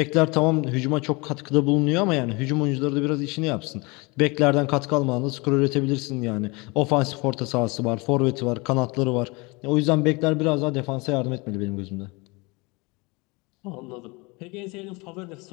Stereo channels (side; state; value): right; quieter; 26.7 dB